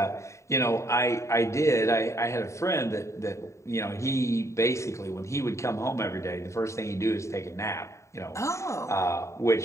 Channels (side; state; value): right; late; 0.14 ms